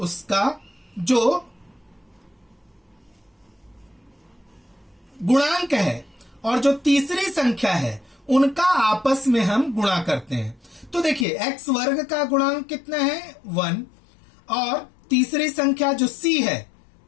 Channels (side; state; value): right; drops out; at 11.2 s